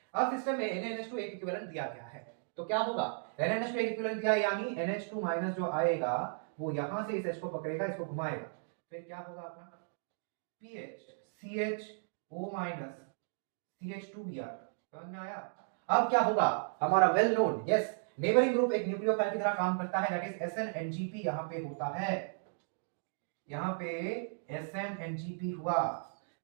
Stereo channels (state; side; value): silent; left; digital silence